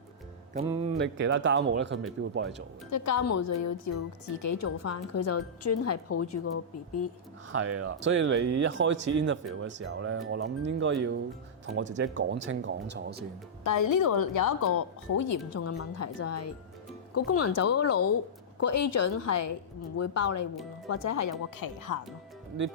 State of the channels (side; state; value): both; normal; correlation -0.14